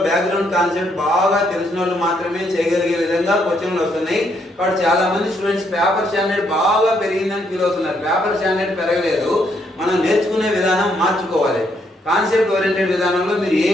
బ్యాక్గ్రౌండ్ కాన్సెప్ట్ బాగా తెలిసిన వాళ్ళు మాత్రమే చేయగలిగే విధంగా క్వశ్చన్లు వస్తున్నాయి. కాబట్టి చాలా మంది స్టూడెంట్స్ పేపర్ స్టాండర్డ్ బాగా పెరిగిందని ఫీల్ అవుతున్నారు. పేపర్ స్టాండర్డ్ పెరగలేదు, మనం నేర్చుకునే విధానం మార్చుకోవాలి. కాన్సెప్ట్ ఓరియంటెడ్ విధానంలో మీరు ఏ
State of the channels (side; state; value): both; normal; correlation 0.73